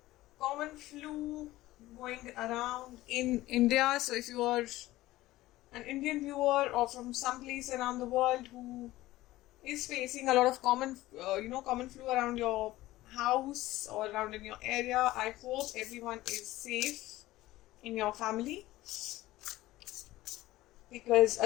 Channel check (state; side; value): quieter; right; 16.9 dB